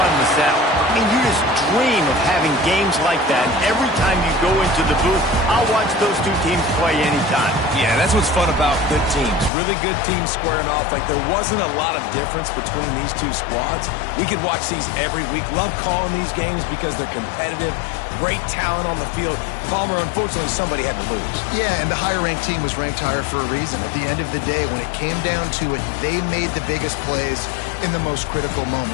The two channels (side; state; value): right; drops out; at 9.5 s